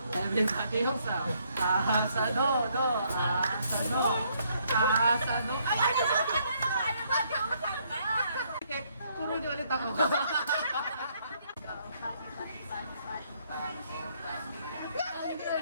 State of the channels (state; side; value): inverted; both; correlation -0.70